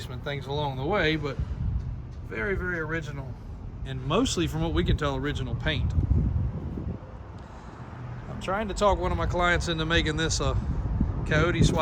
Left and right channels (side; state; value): both; identical; correlation 1.00